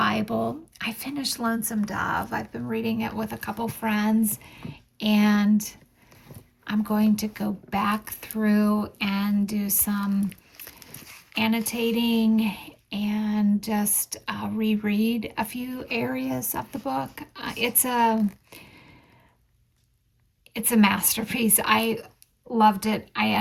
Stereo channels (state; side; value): identical; both; correlation 1.00